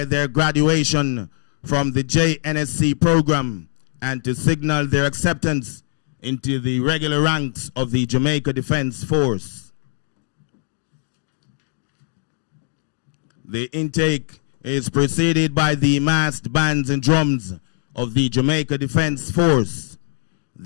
their graduation from the JNSC program and to signal their acceptance into the regular ranks of the Jamaica Defense Force. The intake is preceded by the massed bands and drums of the Jamaica Defense Force.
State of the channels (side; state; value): right; silent; digital silence